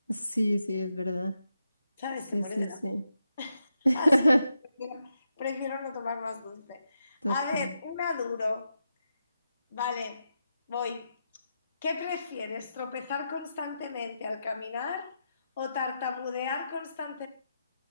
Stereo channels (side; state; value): both; inverted; correlation -0.85